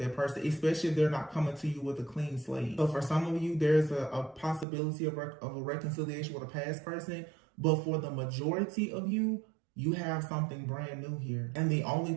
person, especially if they're not coming to you with a clean slate. So for some of you, there's a possibility of a reconciliation with a past person, but for the majority of you, you have something brand new here. And the only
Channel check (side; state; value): left; drops out; at 4.7 s